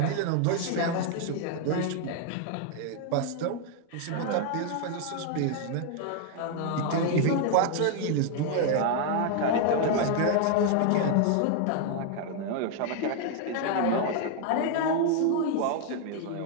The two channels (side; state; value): both; different; correlation 0.00